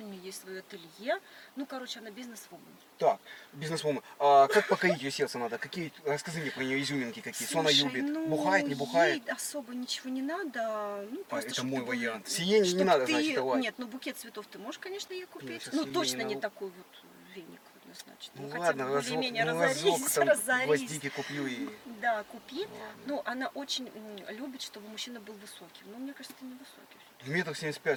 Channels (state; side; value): identical; both; correlation 1.00